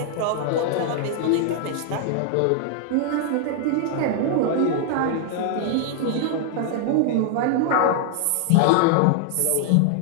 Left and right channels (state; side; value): different; both; correlation 0.00